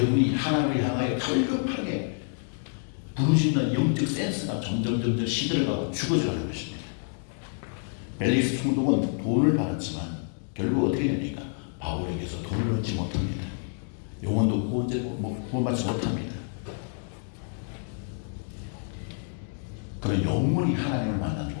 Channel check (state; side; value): silent; right; 59 dB below the other